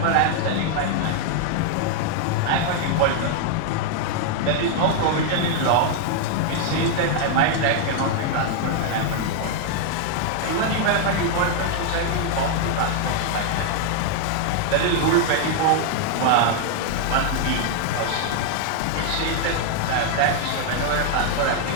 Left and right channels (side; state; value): both; different; correlation 0.00